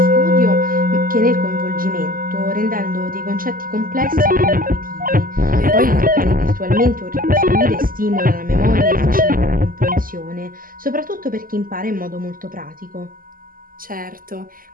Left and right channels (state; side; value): late; left; 0.41 ms